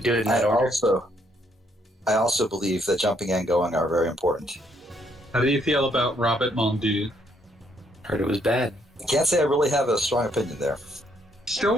do it in that I order. also believe that jumping and going are very important. How do you feel about Robert Mondu? Heard it was bad. I can't say I really have a strong opinion there. Still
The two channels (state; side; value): normal; both; correlation 0.71